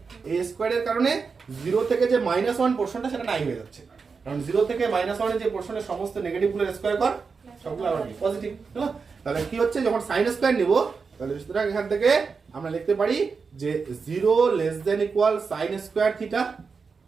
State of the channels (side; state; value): left; quieter; 5.1 dB